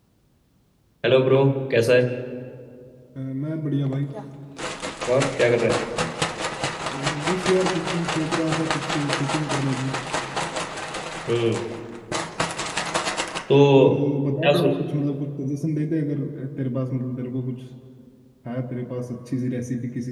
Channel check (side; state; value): both; identical; correlation 1.00